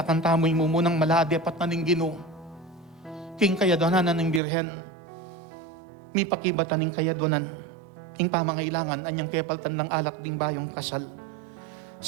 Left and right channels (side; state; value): left; drops out; at 4.4 s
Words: tamo'y mumunang maladi apat na ning Ginoo. king kayadonan ng birhen, mi pakibatan ng kayadonan, ing pamangailangan, anyang kepaltan ng alak ding bayong kasal.